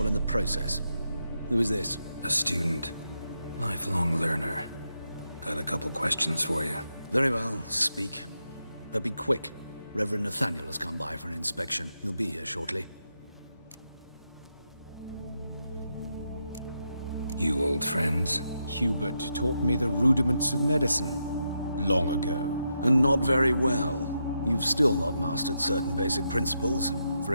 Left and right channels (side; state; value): both; inverted; correlation -0.84